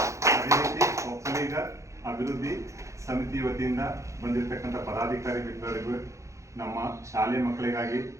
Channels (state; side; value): late; left; 0.15 ms